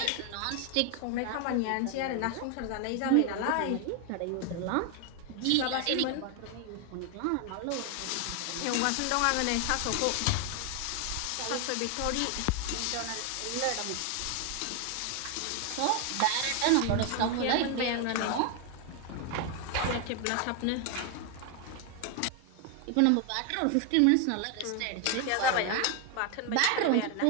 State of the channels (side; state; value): both; different; correlation 0.01